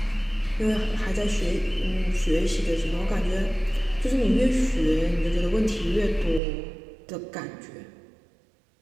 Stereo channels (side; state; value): left; drops out; at 6.4 s